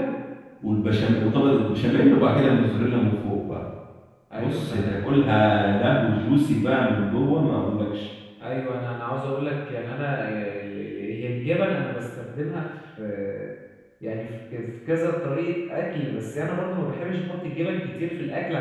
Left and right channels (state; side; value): identical; both; correlation 1.00